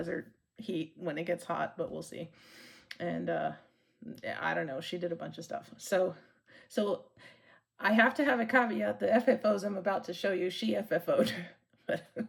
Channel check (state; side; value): identical; both; correlation 1.00